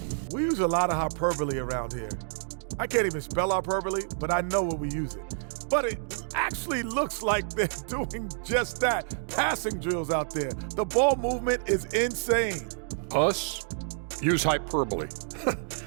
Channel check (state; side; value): silent; left; 59 dB below the other